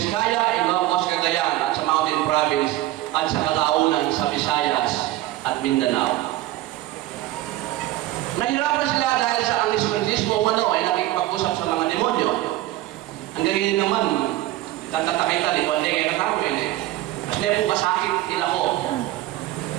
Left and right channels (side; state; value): left; quieter; 15.8 dB